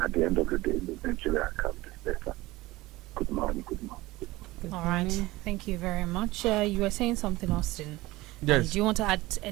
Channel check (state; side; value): quieter; left; 19.5 dB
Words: At the end of the day, Nigeria can be better. Good morning. All right. Thank you very much. You were saying something, Austin. Yes. Do you want to add